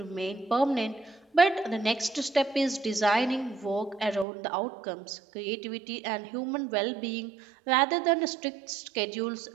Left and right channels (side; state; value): left; drops out; at 4.2 s